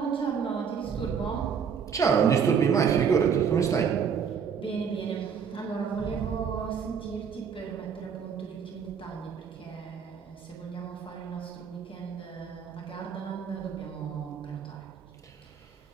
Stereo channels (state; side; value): quieter; left; 6.9 dB